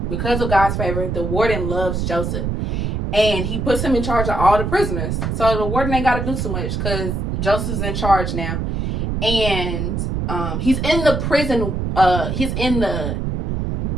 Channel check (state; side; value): noise; right; rumble, 2 dB below the sound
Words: Because of God's favor, the warden loves Joseph. And he puts him in charge of all the prisoners. So the warden ain't got to do too much because Joseph's in charge now. And he's in the prison.